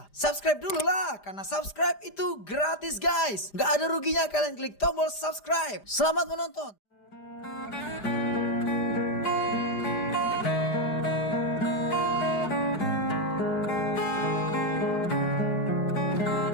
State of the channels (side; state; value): right; late; 5.0 ms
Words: Subscribe dulu lah, karena subscribe itu gratis guys. Nggak ada ruginya kalian klik tombol subscribe. Selamat menonton.